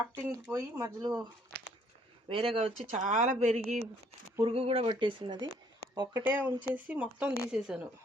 పోయి మధ్యలో వేరేగా వచ్చి చాలా పెరిగి పురుగు కూడా పట్టేసినది. ఒక్కటే ఉంచేసి మొత్తం తీసేసాను.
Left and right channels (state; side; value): normal; both; correlation 0.64